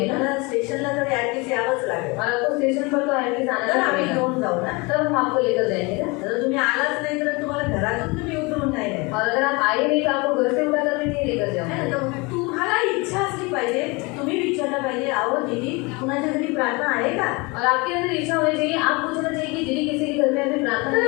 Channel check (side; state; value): right; quieter; 26.8 dB